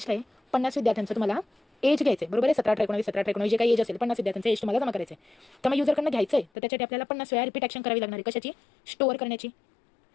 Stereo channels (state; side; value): drops out; right; at 6.5 s